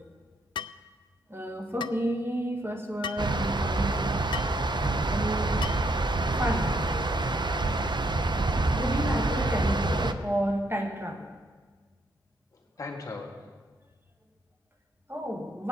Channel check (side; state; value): both; normal; correlation 0.72